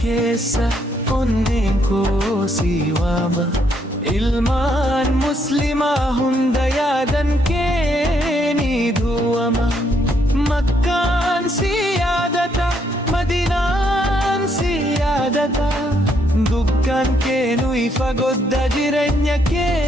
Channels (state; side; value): normal; both; correlation 0.72